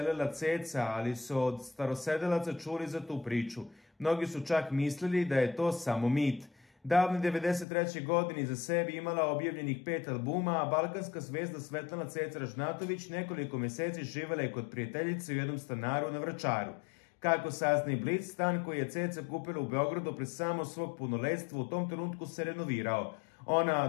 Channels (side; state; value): right; drops out; at 7.7 s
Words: ceca, ali su od starosedelaca čuli za tu priču. Mnogi su čak mislili da je to samo mit. Davne 93. godine iza sebi imala objavljenih 5 albuma, a balkanska zvezda Svetlana Ceca Ražnatović nekoliko meseci živela je kod prijateljice u jednom stanaru na Vračaru. Kako sazna i Blic, stan koji je Ceca kupila u Beogradu pre samo svog punoletstva u tom trenutku se renovirao. Ona